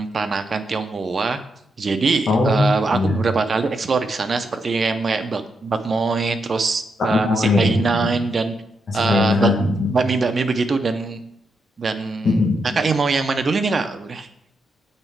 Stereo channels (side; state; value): both; normal; correlation 0.82